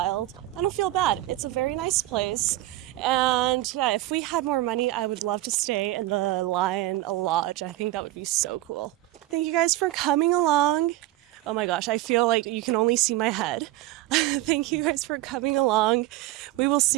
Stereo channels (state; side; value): quieter; left; 16.4 dB